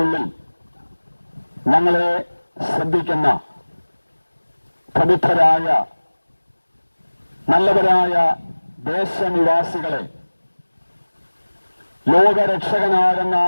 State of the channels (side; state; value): both; inverted; correlation -1.00